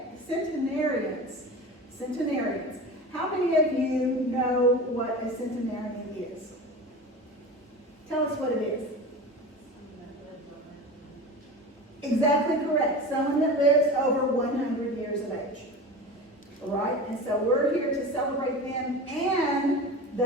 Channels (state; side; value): normal; both; correlation 0.31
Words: How many of you know what a centenarian is? Tell us what it is. Exactly correct. Someone that lives over 100 years of age. All right? And so we're here to celebrate them and